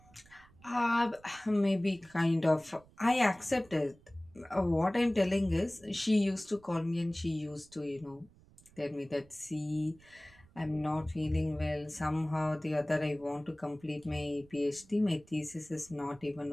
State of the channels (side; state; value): right; noise; rumble, 27 dB below the sound